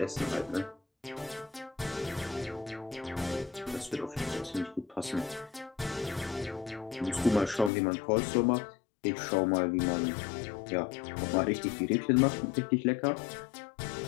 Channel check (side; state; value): right; drops out; at 7.7 s